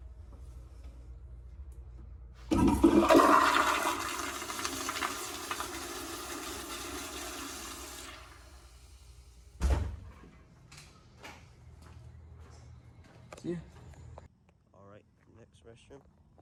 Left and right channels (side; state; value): both; identical; correlation 1.00